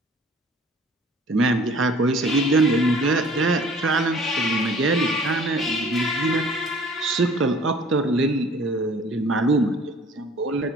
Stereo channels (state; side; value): normal; both; correlation 0.51